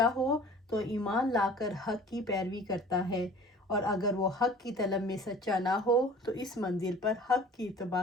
ہو تو ایمان لا کر حق کی پیروی کرتا ہے، اور اگر وہ حق کی طلب میں سچا نہ ہو تو اس منزل پر حق کی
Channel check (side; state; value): both; normal; correlation 0.46